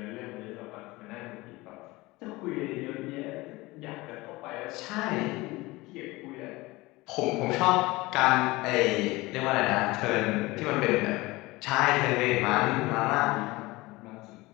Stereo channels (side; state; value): right; quieter; 21.2 dB